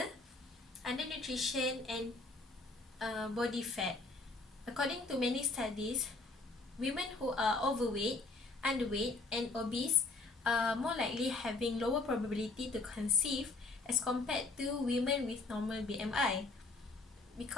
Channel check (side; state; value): right; quieter; 3.4 dB